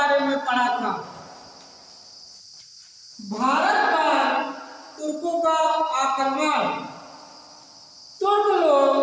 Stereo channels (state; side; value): identical; both; correlation 1.00